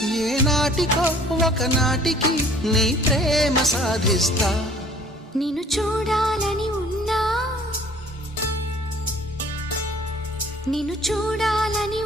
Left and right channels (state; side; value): normal; both; correlation 0.54